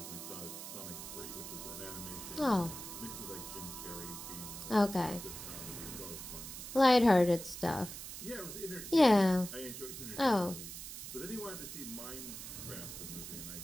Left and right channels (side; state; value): right; noise; hiss, 9 dB below the sound